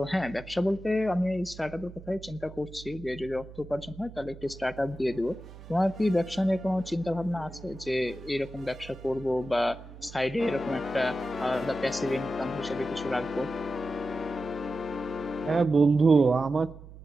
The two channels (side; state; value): right; noise; hum, 16 dB below the sound